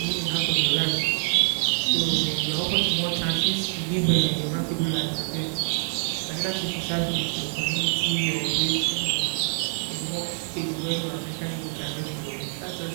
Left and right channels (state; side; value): silent; left; digital silence